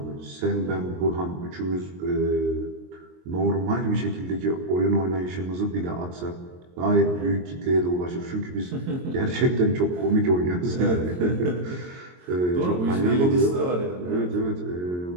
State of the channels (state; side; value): late; left; 22 ms